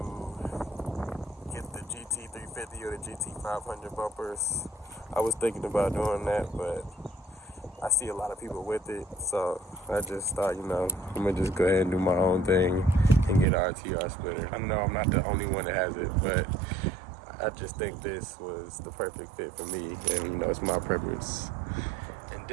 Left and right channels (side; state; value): left; drops out; at 13.5 s